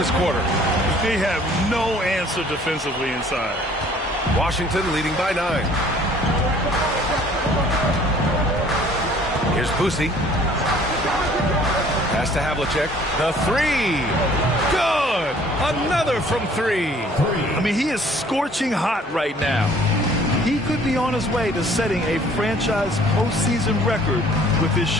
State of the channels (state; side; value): normal; both; correlation 0.55